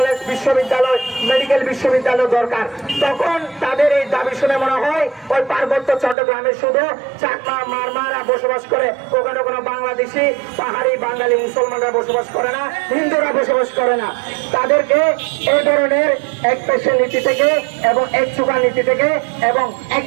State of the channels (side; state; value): left; drops out; at 6.2 s